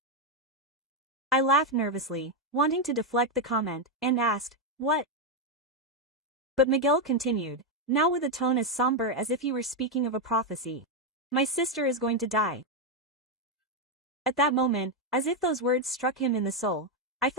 I laughed nervously, wanting to deflect the comment, and asked, "What?" But Miguel continued, now with a tone as somber as if he were speaking of a prophecy. "My sister is going to die." At that moment, as if those words struck him in the soul, I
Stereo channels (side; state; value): both; normal; correlation 0.04